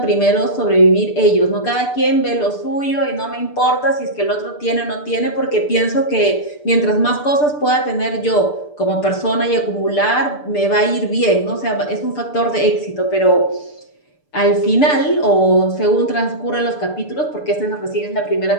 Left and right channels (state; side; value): late; right; 6.8 ms